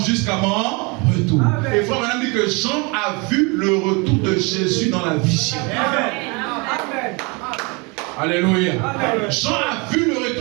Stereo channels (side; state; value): left; quieter; 29.4 dB